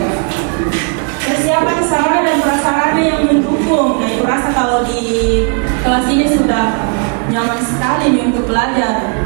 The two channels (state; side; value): quieter; left; 37.1 dB